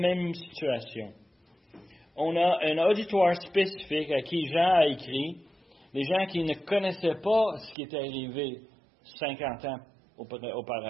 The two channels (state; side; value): drops out; left; at 7.8 s